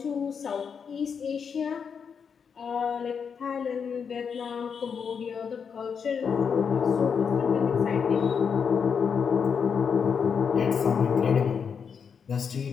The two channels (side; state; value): right; quieter; 6.5 dB